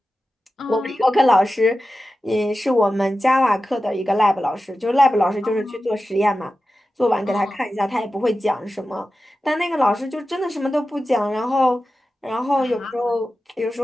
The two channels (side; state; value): both; normal; correlation 0.93